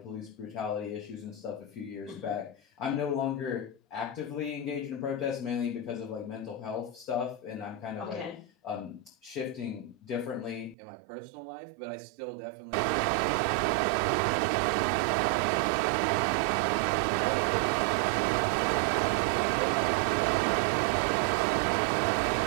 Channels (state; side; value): drops out; left; at 10.8 s